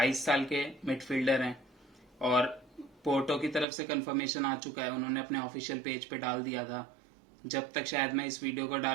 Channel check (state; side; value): drops out; left; at 3.7 s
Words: साल के मिडफील्डर हैं, और पोर्टो की तरफ से कंफर्मेशन आ चुका है, उन्होंने अपने ऑफिशियल पेज पे डाल दिया था। जब तक शायद मैं इस वीडियो को